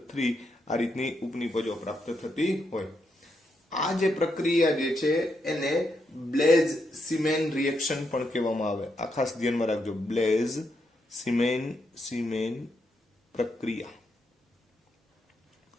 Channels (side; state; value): both; normal; correlation 0.81